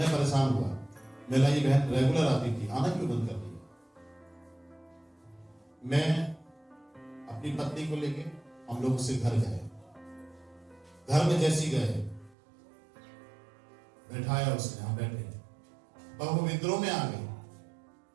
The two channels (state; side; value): drops out; left; at 12.4 s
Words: परेशान हुआ, मेरा ये बहन रेगुलर आती थी, आना क्यों बंद कर दिया? मैं अपनी पत्नी को लेके हम लोग उससे घर गए। घर में जैसी गए, बैठाया उसने, हम बैठे, पर वो विद्रोह में आ गई।